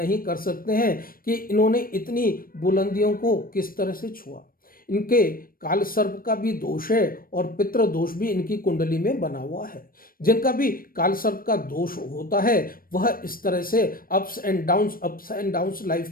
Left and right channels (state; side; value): late; right; 0.41 ms